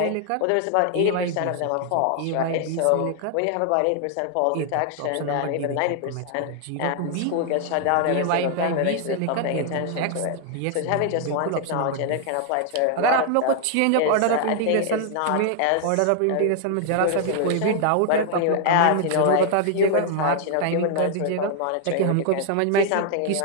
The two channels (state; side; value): different; both; correlation 0.00